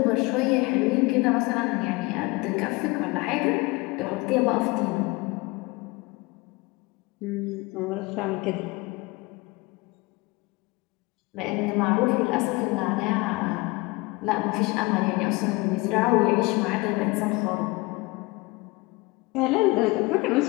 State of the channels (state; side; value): quieter; right; 24.1 dB